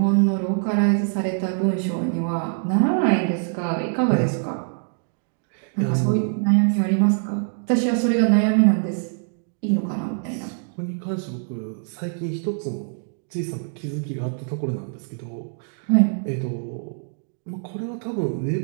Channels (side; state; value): left; silent; digital silence